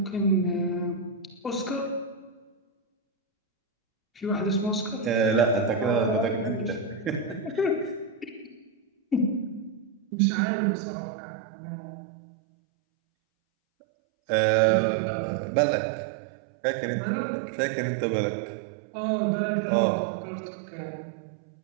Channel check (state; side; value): drops out; left; at 10.1 s